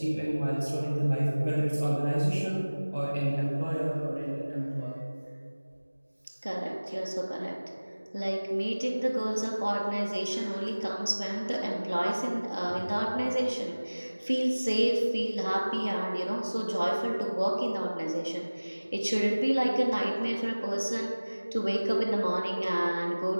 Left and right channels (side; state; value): both; inverted; correlation -1.00